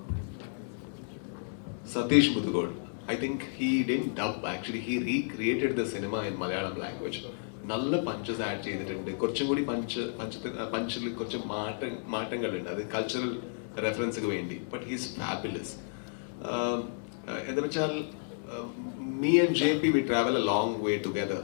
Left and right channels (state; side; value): silent; right; digital silence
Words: Satheesh മുതുകോൾ, I think he didn't dub, actually he recreated the cinema in Malayalam language. നല്ല പഞ്ചസ് ആഡ് ചെയ്തിട്ടുണ്ട്. കുറച്ചും കൂടി പഞ്ചിൽ കുറച്ച് മാറ്റങ്ങളുണ്ട്, അത് കൾച്ചറൽ റെഫറൻസിന് വേണ്ടി. But he's fabulous. എന്താ വെച്ചാൽ me and JP we travel a long way together.